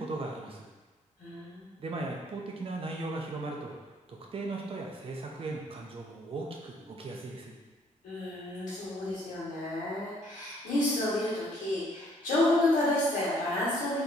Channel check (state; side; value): normal; both; correlation 0.63